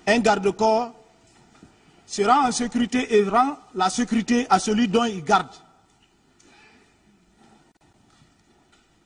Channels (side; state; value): both; identical; correlation 1.00